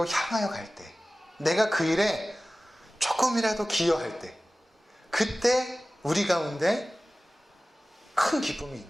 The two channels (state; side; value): normal; both; correlation 0.97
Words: 향하여 갈 때, 내가 그 일에 조금이라도 기여할 때, 그때 우리 가운데 큰 기쁨이